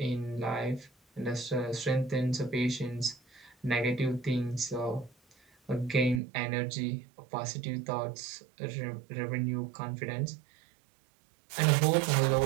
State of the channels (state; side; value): drops out; left; at 6.2 s